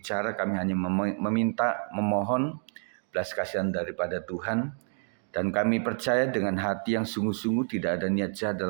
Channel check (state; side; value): silent; left; 59 dB below the other